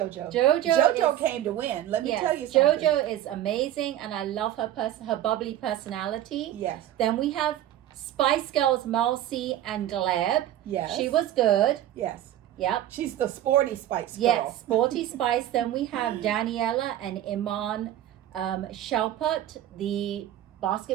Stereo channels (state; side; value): quieter; left; 12.4 dB